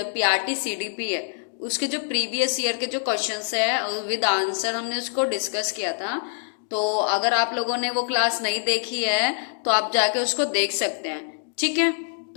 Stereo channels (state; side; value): silent; right; digital silence